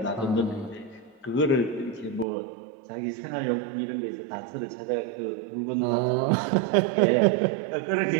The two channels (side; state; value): left; drops out; at 2.2 s